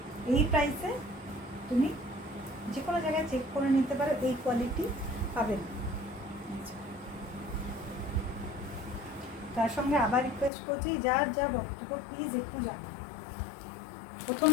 এই প্রাইসে তুমি যে কোনো জায়গায় চেক করে নিতে পারো, এই কোয়ালিটি পাবে না। তার সঙ্গে আবার রিকোয়েস্ট করছি, যার যা বক্তব্য প্লিজ একটু জানো।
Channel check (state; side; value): drops out; right; at 10.5 s